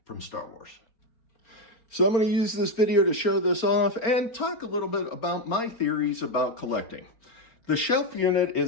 from Star Wars. So I'm going to use this video to show this off and talk a little bit about my theories about collecting. The shelf unit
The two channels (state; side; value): late; right; 4.3 ms